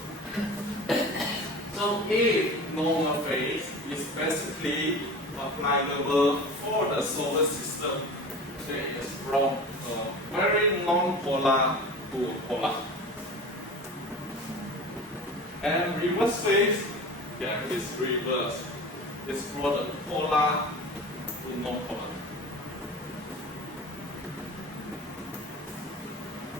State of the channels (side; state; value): both; normal; correlation 0.35